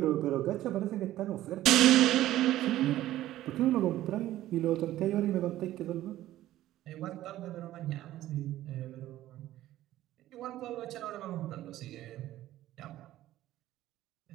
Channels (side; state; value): left; quieter; 14.3 dB